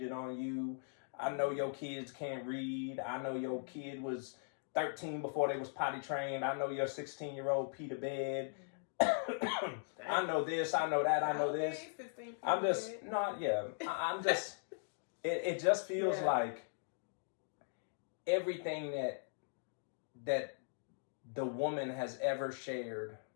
on you. I know your kids can't read. I know your kid was 13 before they was potty trained. I know your 16-year-old peed a bed. I know this, I know that, I know this. I'm just, not, yeah. I'm just, it just feels like everything that the woman has ever shared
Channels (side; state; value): right; silent; digital silence